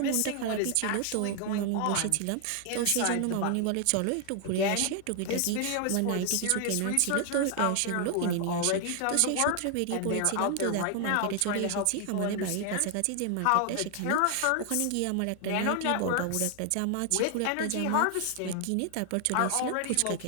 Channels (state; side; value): different; both; correlation 0.00